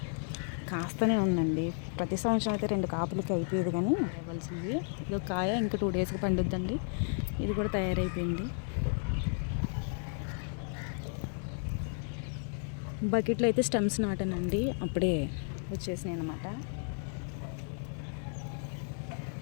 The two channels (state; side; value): silent; right; 56 dB below the other